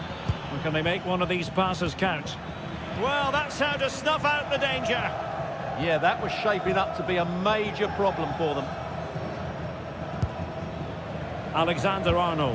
And can they make one of these passes count? Well, that's how to snuff out the danger. Yeah, that was shaping up to be a major problem for them.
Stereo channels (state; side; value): identical; both; correlation 1.00